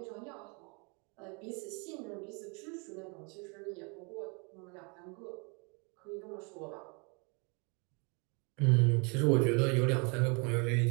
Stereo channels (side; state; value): left; quieter; 33.7 dB